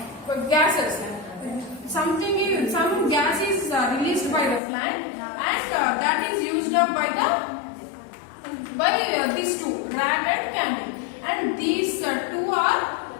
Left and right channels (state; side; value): drops out; right; at 4.6 s